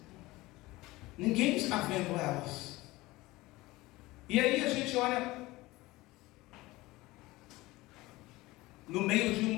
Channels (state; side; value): quieter; right; 19.9 dB